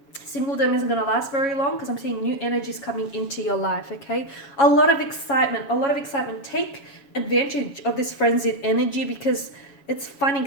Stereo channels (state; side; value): late; right; 7.1 ms